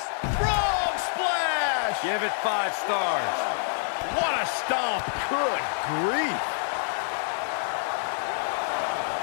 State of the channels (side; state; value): right; silent; digital silence